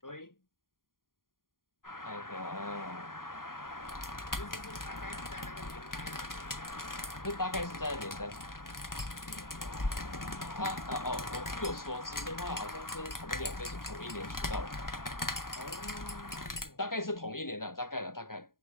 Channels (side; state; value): right; late; 0.91 ms